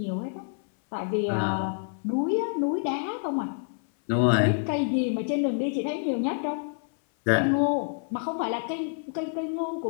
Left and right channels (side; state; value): right; silent; 60 dB below the other